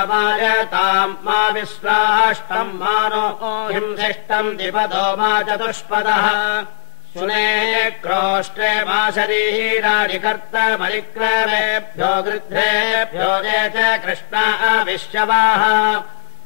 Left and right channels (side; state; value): right; silent; digital silence